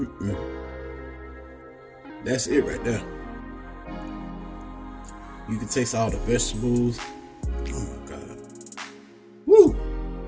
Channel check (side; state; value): both; identical; correlation 1.00